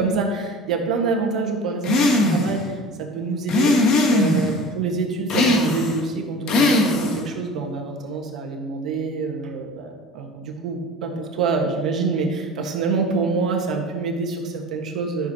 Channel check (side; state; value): both; normal; correlation 0.37